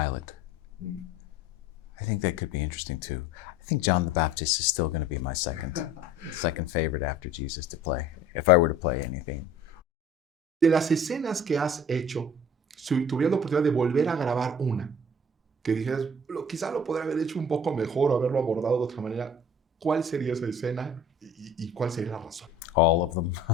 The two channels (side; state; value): both; normal; correlation 0.46